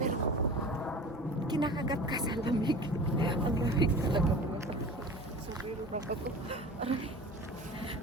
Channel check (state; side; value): normal; both; correlation 0.37